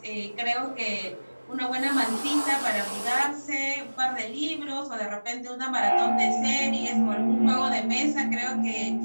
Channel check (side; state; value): both; inverted; correlation -1.00